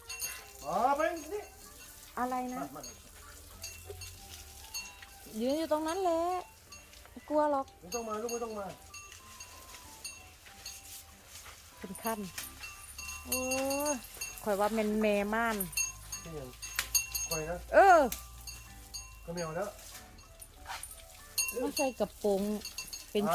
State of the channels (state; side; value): identical; both; correlation 1.00